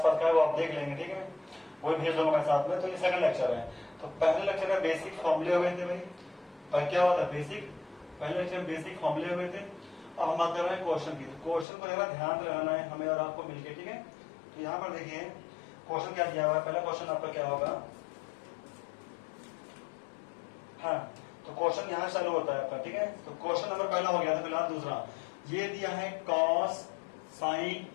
का है, वो आप देख लेंगे, ठीक है, वो भेज दूंगा मैं साथ में। तो ये सेकंड लेक्चर है। तो पहले लेक्चर में बेसिक फॉर्मूले हुए थे भाई, पर क्या हुआ था बेसिक, पहले लेक्चर में बेसिक फॉर्मूले हुए थे। अब हम बात कर रहे हैं क्वेश्चन की। तो क्वेश्चन को जरा ध्यान रहना है हमें और आपको मिलकर, ठीक है। तो यहाँ पर देखिए क्वेश्चन क्या दिया हुआ है। पहला क्वेश्चन आपका क्या होगा, हाँ, तो क्वेश्चन यहाँ चालू होता है आपका, ठीक है। तो क्वेश्चन नंबर पहला हो गया था, फिलहाल दूसरा ये दिया है cos sin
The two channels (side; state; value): right; drops out; at 11.7 s